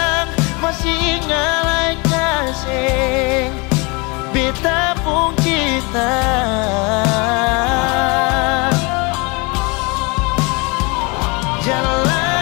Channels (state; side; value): quieter; right; 28.9 dB